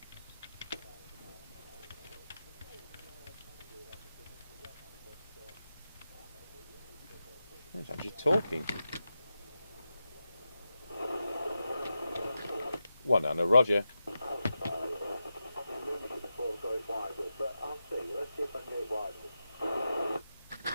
It's actually talking. One and a Roger.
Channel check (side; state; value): both; inverted; correlation -0.90